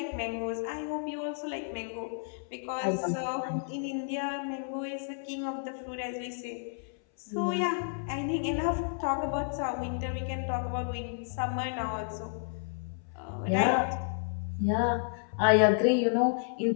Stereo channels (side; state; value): right; silent; 57 dB below the other